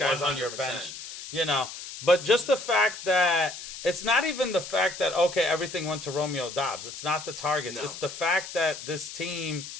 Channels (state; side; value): noise; left; hiss, 11 dB below the sound